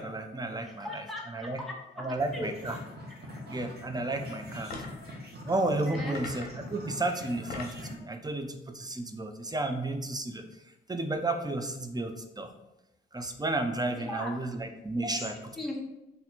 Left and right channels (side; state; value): both; normal; correlation 0.57